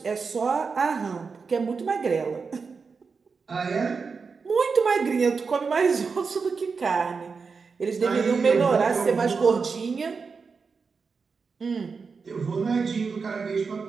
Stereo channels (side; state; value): left; quieter; 5.0 dB